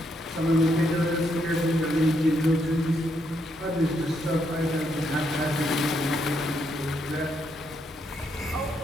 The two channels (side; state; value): both; normal; correlation 0.77